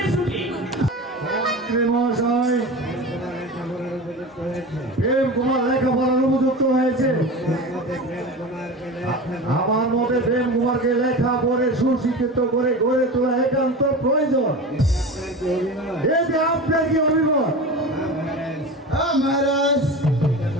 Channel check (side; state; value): both; normal; correlation 0.30